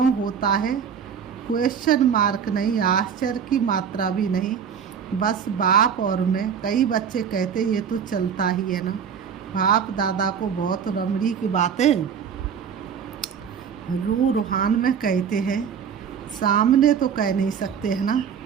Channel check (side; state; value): left; quieter; 7.4 dB